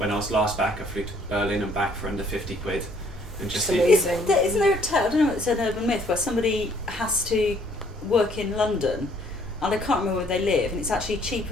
I was last back, I flew to Berlin and back for under 50 quid. And just amazing. Isn't there a tale, I don't know, it's an urban myth, where somebody has to work in London, and I can't remember where they live, and it's actually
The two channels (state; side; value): normal; both; correlation 0.62